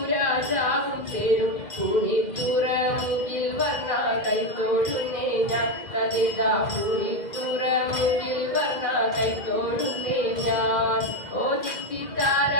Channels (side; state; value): right; late; 2.0 ms